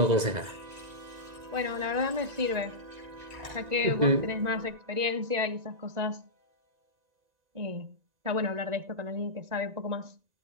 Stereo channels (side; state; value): left; late; 1.9 ms